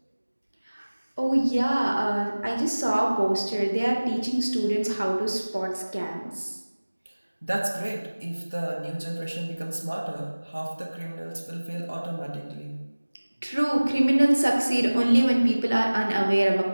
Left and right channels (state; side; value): inverted; both; correlation -1.00